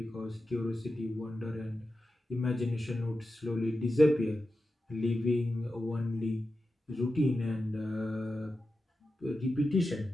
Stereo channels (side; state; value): both; normal; correlation 0.91